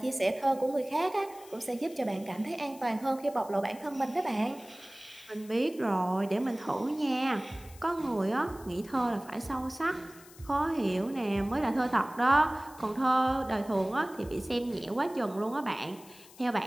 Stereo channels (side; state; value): left; noise; hiss, 21 dB below the sound